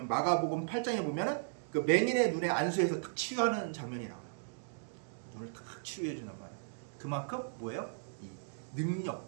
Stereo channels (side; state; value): left; silent; digital silence